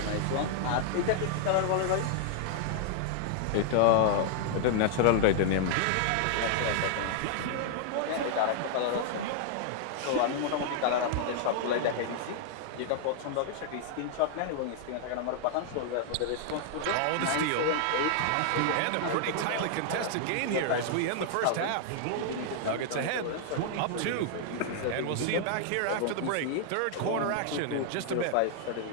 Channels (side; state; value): both; different; correlation -0.01